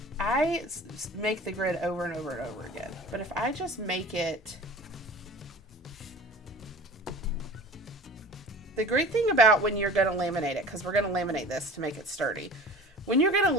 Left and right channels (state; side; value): normal; both; correlation 0.40